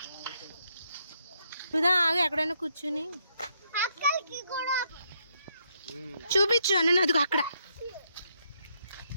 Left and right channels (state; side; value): inverted; both; correlation -0.76